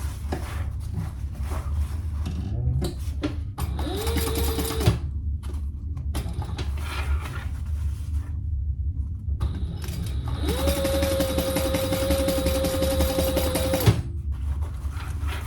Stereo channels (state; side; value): identical; both; correlation 1.00